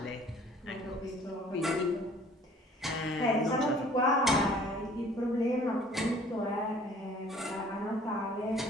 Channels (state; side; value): normal; both; correlation 0.53